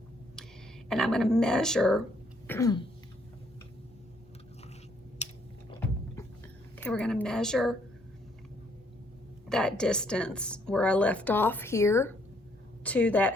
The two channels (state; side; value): normal; both; correlation 0.68